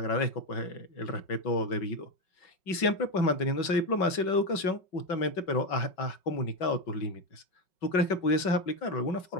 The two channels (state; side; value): late; right; 5.4 ms